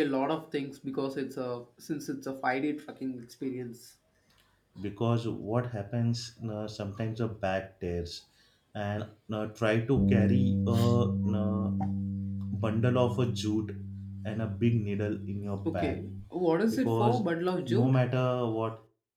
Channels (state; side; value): identical; both; correlation 1.00